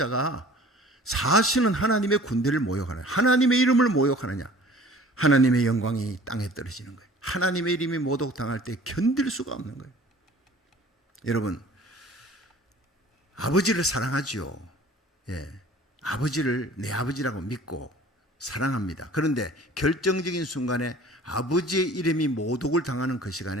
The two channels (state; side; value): normal; both; correlation 0.48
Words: 사실은 하나님의 군대를 모욕하느냐, 하나님의 이름을 모욕하느냐. 하나님의 영광이 땅에 떨어지는 거예요. 하나님의 이름이 모독당할 때 견딜 수가 없는 거예요. 여러분, 아버지를 사랑하지요. 아버지를 내 아버지라고 믿고 사랑합니다. 그런데 결정적인 순간에 아버지의 이름이 모독을 당하는 그